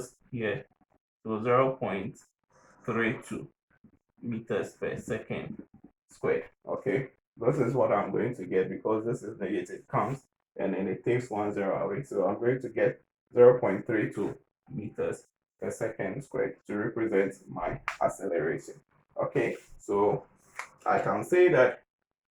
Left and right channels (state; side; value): identical; both; correlation 1.00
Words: here, so 0.32 meters per second squared. Okay, this is what I'm going to get because this is negative, comes and then it takes 1 0 away. So I'm going to get 0.32 meters per second squared to represent my acceleration. Okay, so I can say that